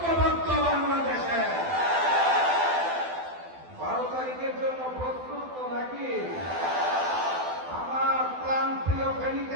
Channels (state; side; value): late; left; 12 ms